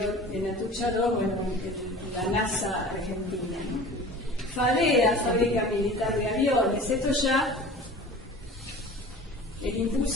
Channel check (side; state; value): both; normal; correlation 0.40